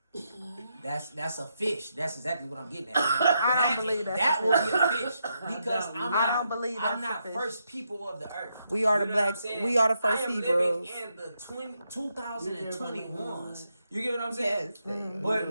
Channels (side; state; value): both; inverted; correlation -0.81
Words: That's a fish. That's exactly what I'm getting at. I don't believe that will be a fish because I don't believe I'm not first people of the earth. We are the black. We are the first Hebrews. I am living in the 2021s. You get what I'm saying?